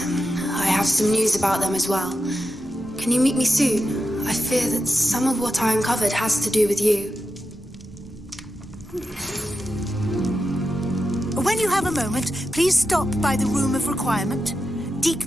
I have some news about them as well. Can you meet me soon? I fear that some of what I uncovered has to do with you. When you have a moment, please stop by the Room of Requirement. Deke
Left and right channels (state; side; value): normal; both; correlation 0.89